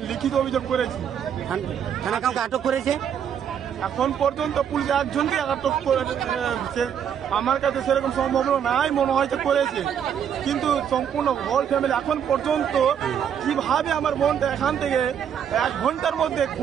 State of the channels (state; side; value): quieter; left; 8.5 dB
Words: লিখিত অভিযোগ করেছি। থানা কাউকে আটক করেছে? এখন পর্যন্ত পুলিশ একজনকে আটক করেছে। আমার কাছে সেরকম সম্ভাবনা নাই, মনে হয়েছে করেছে, কিন্তু সম্পূর্ণ হোল ফ্যামিলি এখন পর্যন্ত কিভাবে আমার বোনটা এখান থেকে 1 ঘন্টার মধ্যে